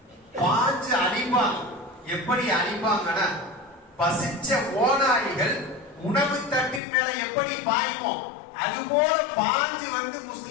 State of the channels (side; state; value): right; drops out; at 6.8 s